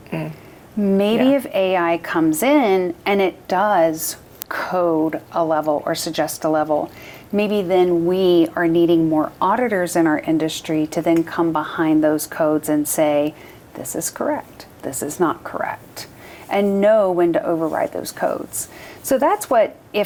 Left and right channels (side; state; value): both; identical; correlation 1.00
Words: Maybe if AI comes in and it does code a level or suggest a level, maybe then we are needing more auditors in our industry to then come behind those codes and say, this is correct, this is not correct, and know when to override those codes. So that's what,